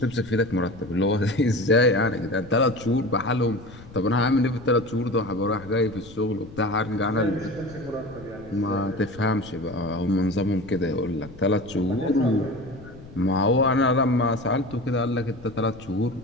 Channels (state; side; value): noise; left; rumble, 18 dB below the sound